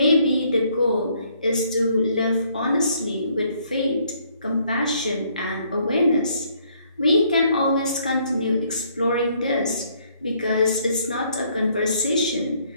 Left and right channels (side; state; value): both; inverted; correlation -0.67